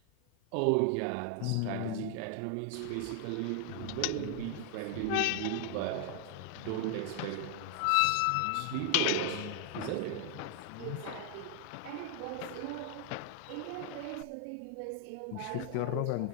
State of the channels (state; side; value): different; both; correlation 0.00